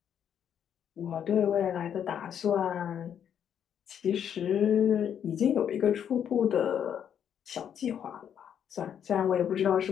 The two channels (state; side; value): quieter; right; 8.8 dB